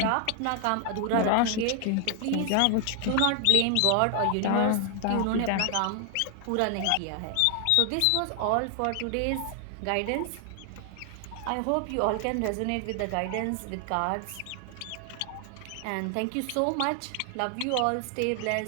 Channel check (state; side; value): different; both; correlation 0.00